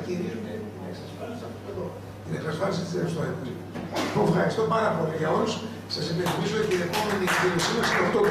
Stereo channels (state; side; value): identical; both; correlation 1.00